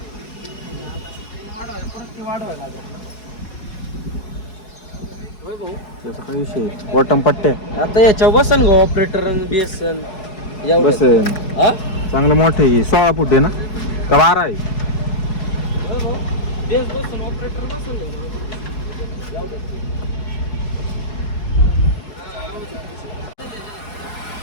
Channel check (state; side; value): late; right; 4.7 ms